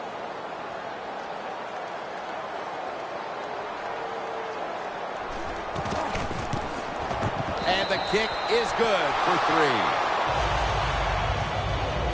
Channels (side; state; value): both; identical; correlation 1.00